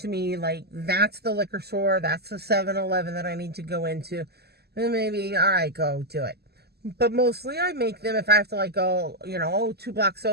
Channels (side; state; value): left; late; 0.47 ms